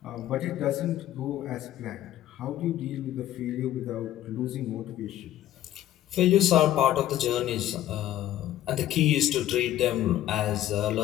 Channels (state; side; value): quieter; right; 12.9 dB